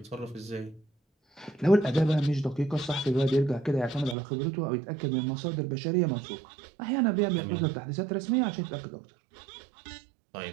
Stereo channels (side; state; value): left; drops out; at 4.2 s